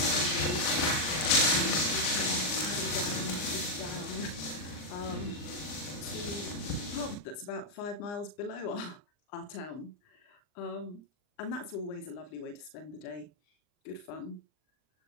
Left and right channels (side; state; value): right; late; 39 ms